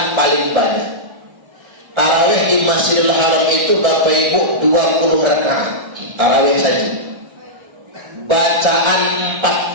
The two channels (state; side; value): late; left; 1.3 ms